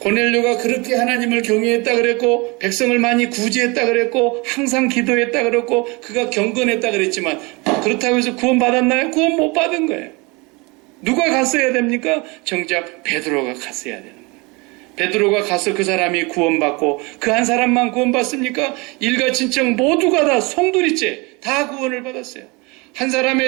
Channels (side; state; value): left; quieter; 26.8 dB